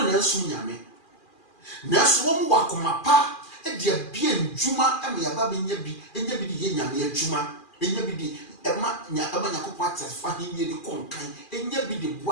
Nelson Yame. Nelson Wakumapa, and dear bien Juma, and me a baby yabi, and yabi the Yamia Juma, and yabi the Emma Yamanakopata, finding ye the conkai, and yabi the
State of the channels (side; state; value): right; late; 2.4 ms